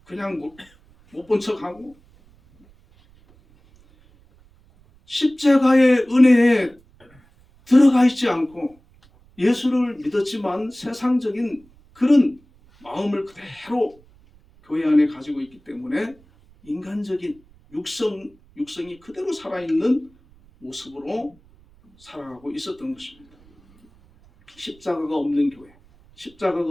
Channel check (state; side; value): noise; right; rumble, 29 dB below the sound